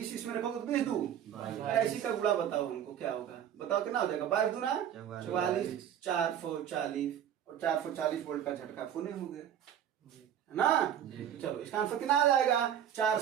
इसमें रखोगे तो 20 दूं ऐसी का गुणा बताओ हमको क्या होगा, बताओ कितना हो जाएगा 22 दूना 44, 4 4 40 और 440 वोल्ट का झटका फोने हो गए है ना। चलो इसका आंसर कितना आ जाएगा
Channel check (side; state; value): left; quieter; 9.8 dB